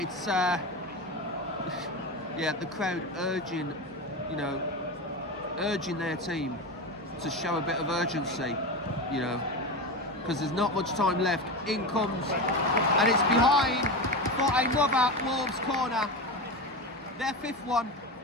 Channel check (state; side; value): normal; both; correlation 0.21